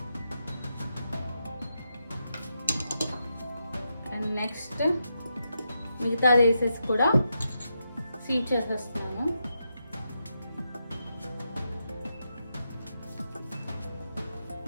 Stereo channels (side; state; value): both; inverted; correlation -0.84